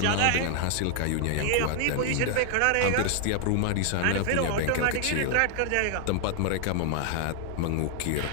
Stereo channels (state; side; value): different; both; correlation 0.00